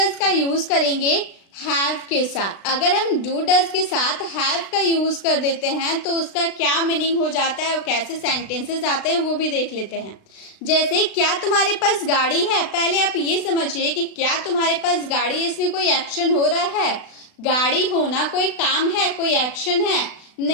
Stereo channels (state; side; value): late; right; 36 ms